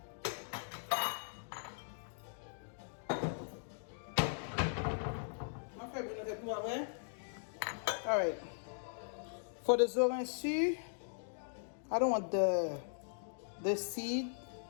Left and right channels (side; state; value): right; silent; digital silence